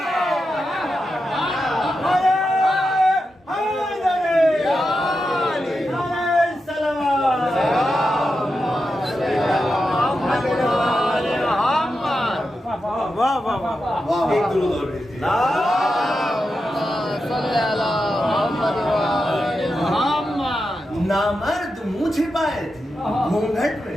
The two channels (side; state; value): both; normal; correlation 0.88